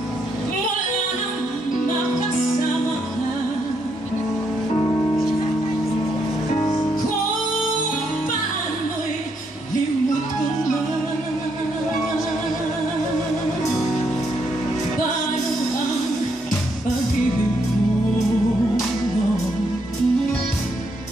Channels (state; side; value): normal; both; correlation 0.76